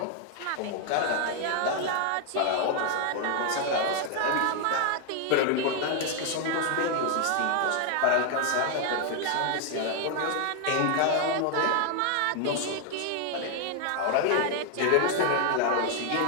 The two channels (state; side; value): different; both; correlation 0.00